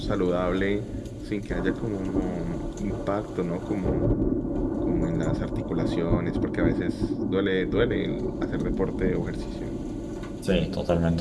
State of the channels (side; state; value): both; identical; correlation 1.00